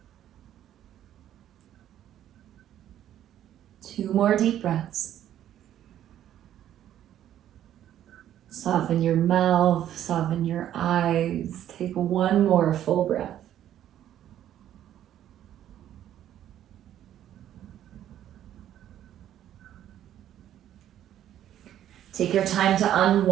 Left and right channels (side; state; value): left; quieter; 11.4 dB